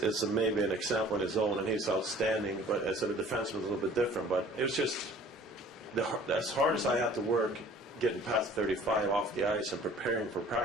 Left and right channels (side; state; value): both; normal; correlation 0.50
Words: maybe an example in his own, and he's outstanding. But as a defenseman, it's a little bit different. But it was just as hard as I had to work, getting past 35 off the ice and preparing for